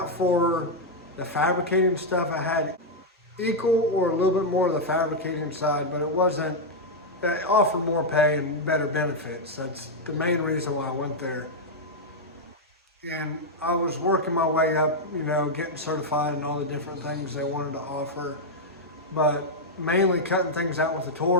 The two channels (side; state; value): both; normal; correlation -0.01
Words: for the fabricating stuff. I had equal or a little bit more of the fabricating side, but it offered more pay and better benefits. That's the main reason why I went there. And I was working my way up, getting certified and all the different things they wanted to offer, but mainly cutting things out with a